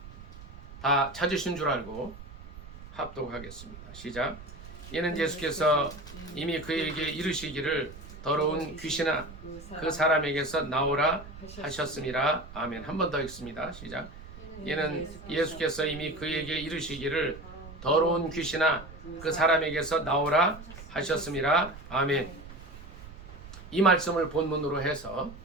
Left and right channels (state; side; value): noise; right; rumble, 15 dB below the sound